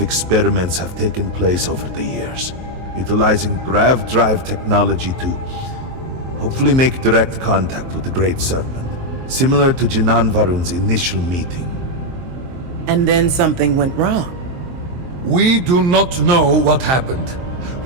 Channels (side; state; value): left; late; 23 ms